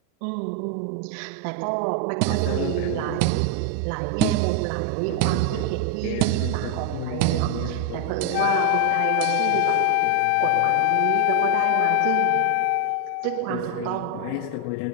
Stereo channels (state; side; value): different; both; correlation 0.00